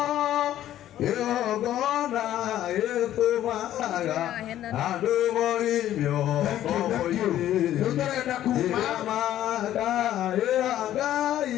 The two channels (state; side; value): quieter; right; 12.4 dB